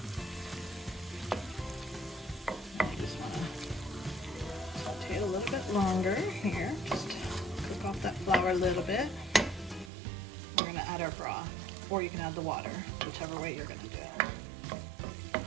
Longer here, just cook off that flour a little bit. We're going to add our broth, or you can add the water, whichever way you're going to do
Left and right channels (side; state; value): left; drops out; at 9.9 s